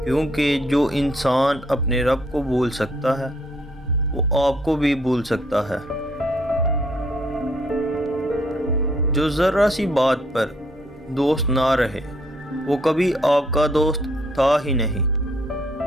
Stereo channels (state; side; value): normal; both; correlation 0.67